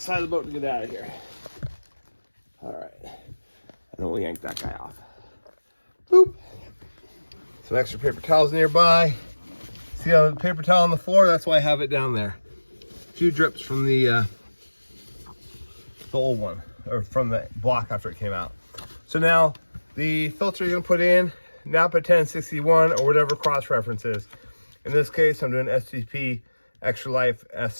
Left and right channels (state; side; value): inverted; both; correlation -1.00